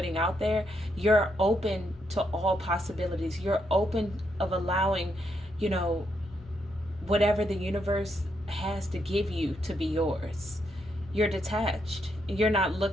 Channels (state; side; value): normal; both; correlation 0.78